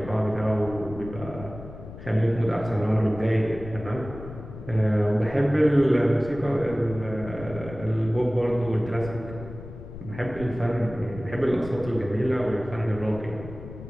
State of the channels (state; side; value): noise; left; rumble, 13 dB below the sound